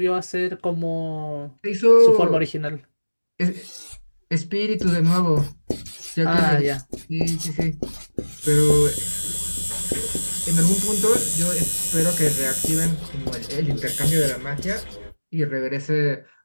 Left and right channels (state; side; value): inverted; both; correlation -1.00